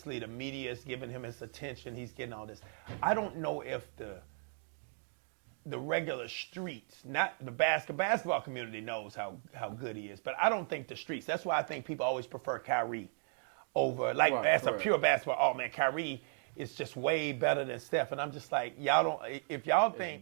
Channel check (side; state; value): left; silent; 54 dB below the other